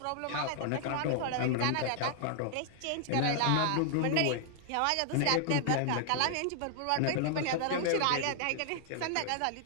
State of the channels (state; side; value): different; both; correlation 0.00